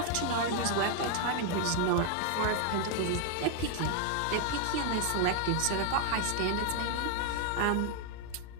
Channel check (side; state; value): both; different; correlation 0.00